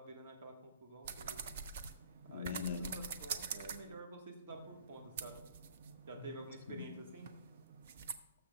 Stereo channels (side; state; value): both; inverted; correlation -0.51